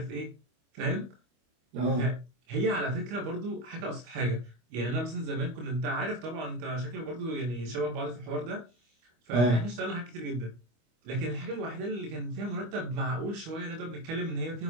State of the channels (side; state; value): left; late; 25 ms